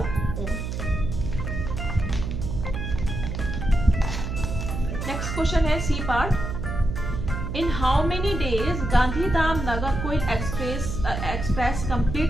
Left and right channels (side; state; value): right; noise; hum, 4 dB below the sound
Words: own. Next question है C part. In how many days Gandhidham Nagercoil express